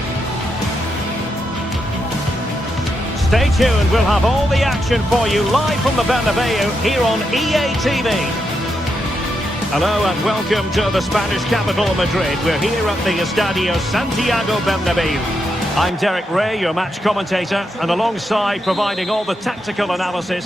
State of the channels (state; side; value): normal; both; correlation 0.83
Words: Stay tuned, we'll have all the action for you live from the Bernabeu here on EA TV. Hello and welcome to the Spanish capital, Madrid. We're here at the Estadio Santiago Bernabeu. I'm Derek Ray, your match commentator, and alongside providing all the tactical